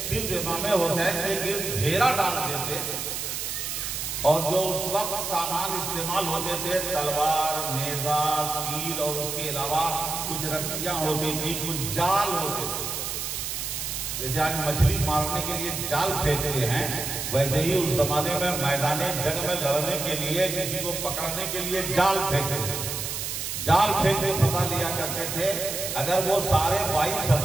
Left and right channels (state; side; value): noise; right; hiss, 4 dB below the sound